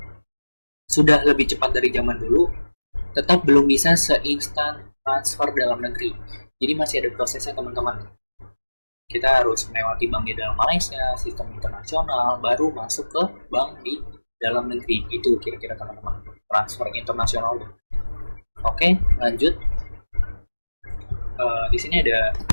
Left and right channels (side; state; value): both; inverted; correlation -1.00